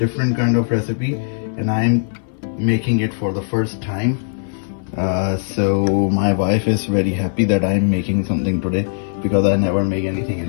kind of recipe, and I'm making it for the first time. So my wife is very happy that I'm making something today because I never make anything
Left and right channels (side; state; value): right; silent; 60 dB below the other